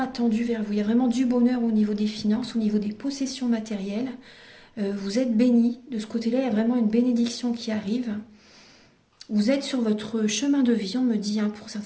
vers vous. Il y a vraiment du bonheur au niveau des finances, au niveau des possessions matérielles. Vous êtes bénis. De ce côté-là, il y a vraiment une bénédiction qui arrive. Vous êtes sur votre chemin de vie, on me dit, hein, pour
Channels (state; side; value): identical; both; correlation 1.00